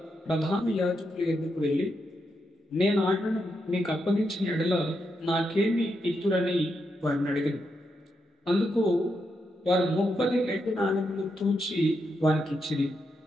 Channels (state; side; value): normal; both; correlation 0.83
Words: ప్రధాన యాజకుల ఎద్దుకు వెళ్ళి, నేను ఆయనను మీకు అప్పగించిన ఎడల నాకేమి ఇత్తురని వారిని అడిగాను. అందుకు వారు 30 వెండి నాణెములు తూచి వారికి ఇచ్చింది.